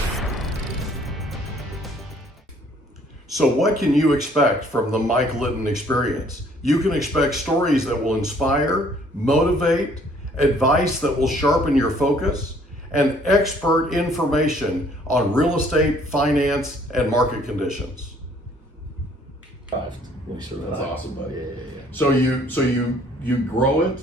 So what can you expect from the Mike Litton Experience? You can expect stories that will inspire, motivate, advice that will sharpen your focus, and expert information on real estate, finance, and market conditions. That's awesome, buddy. Yeah. So you grow it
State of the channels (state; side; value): normal; both; correlation 0.60